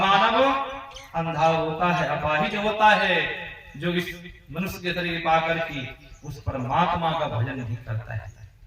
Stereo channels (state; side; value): identical; both; correlation 1.00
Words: मानव अंधा होता है, अपाहिज होता है, जो इस मनुष्य के शरीर पाकर के उस परमात्मा का भजन नहीं करता है,